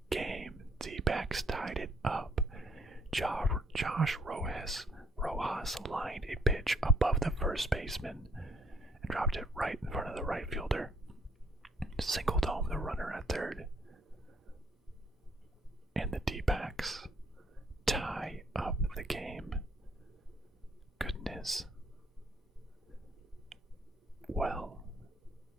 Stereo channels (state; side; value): normal; both; correlation 0.65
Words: game. Dbacks tied it up. Josh Rojas lined a pitch above the first baseman and dropped it right in front of the right fielder. Singled home the runner at third. And the D-backs tie up the game. Goodness. Well,